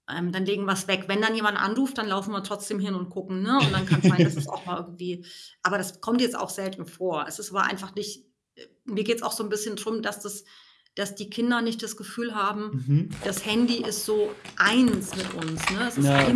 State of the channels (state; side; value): identical; both; correlation 1.00